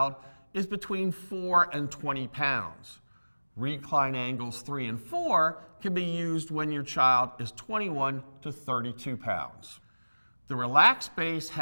is between 4 and 20 pounds. Recline angles 3 and 4 can be used when your child is 21 to 32 pounds. The RELX base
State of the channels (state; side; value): inverted; both; correlation -1.00